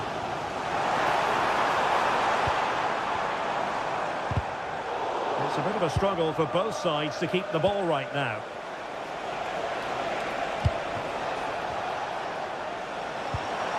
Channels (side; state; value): both; identical; correlation 1.00